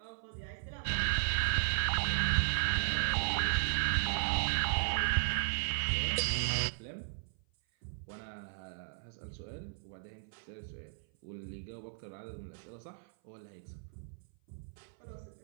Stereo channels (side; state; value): left; silent; 54 dB below the other